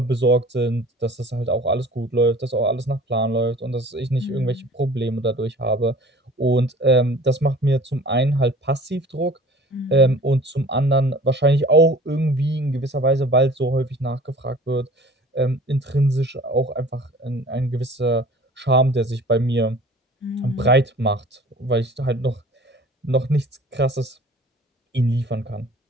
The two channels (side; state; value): both; normal; correlation 0.46